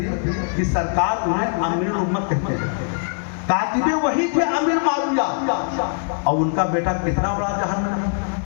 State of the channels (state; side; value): silent; right; digital silence